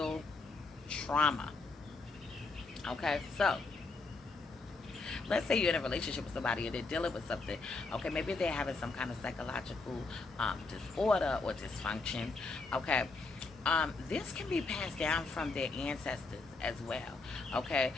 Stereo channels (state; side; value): quieter; right; 3.7 dB